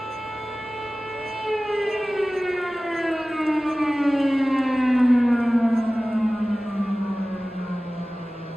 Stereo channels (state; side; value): normal; both; correlation 0.97